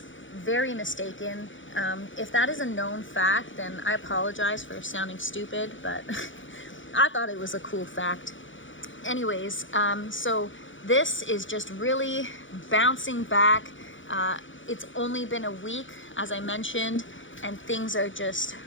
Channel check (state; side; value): late; right; 0.56 ms